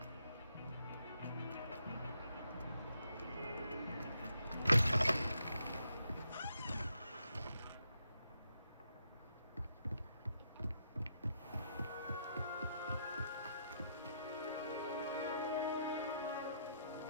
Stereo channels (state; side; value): inverted; both; correlation -0.78